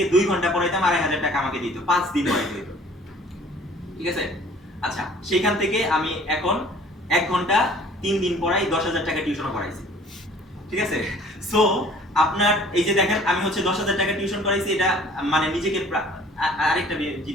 2 ঘন্টা পড়াইতাম, 2,500 টাকা আমাকে দিত, 5 দিন পড়াইতে দিত। ঠিক আছে? আচ্ছা, সেখান থেকে আমি এখন 1 ঘন্টা 3 দিন পড়াই, 10,000 টাকা টিউশনও করাইছি। ঠিক আছে? সো আপনার এই যে দেখেন আমি হচ্ছে 10,000 টাকা টিউশন করাইছি, এটা মানে নিজেকে আরেকটা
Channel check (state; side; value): normal; both; correlation 0.52